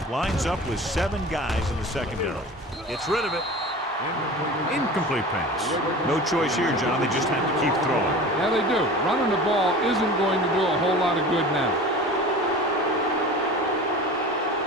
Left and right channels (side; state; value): both; normal; correlation 0.37